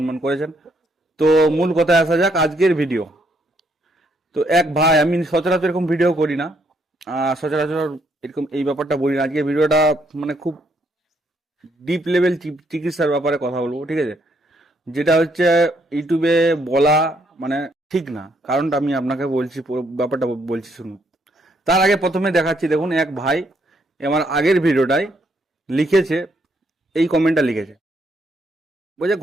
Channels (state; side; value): normal; both; correlation 0.72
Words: করেছেন। তো মূল কথায় আসা যাক, আজকের ভিডিও। তো এক ভাই, আমি সচরাচর এরকম ভিডিও করি না, সচরাচর এরকম এই ব্যাপারটা বলি না। আজকে ভিডিওটা মানে খুব ডিপ লেভেল চিকিৎসার ব্যাপারে কথা বলবো, ঠিক আছে? যেটা হচ্ছে ইউটিউবে বলা মানে ঠিক না, কারণটা আমি আপনাকে বলছি, পুরো ব্যাপারটা বলছি, শুনুন। তার আগে প্রথমে দেখাচ্ছি, দেখুন এক ভাই আমার আগের ভিডিওটায় লিখেছে, এই কমেন্টটা লিখেছে, বলছে